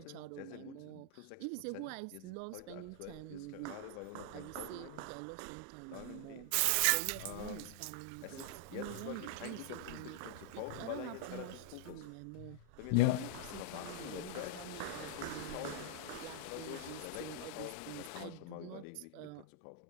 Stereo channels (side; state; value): both; different; correlation -0.01